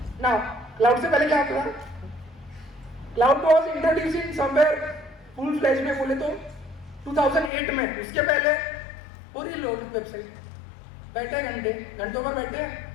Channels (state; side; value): drops out; right; at 7.5 s